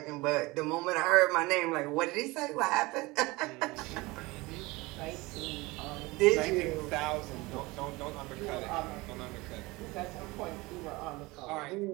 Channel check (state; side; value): quieter; left; 22.5 dB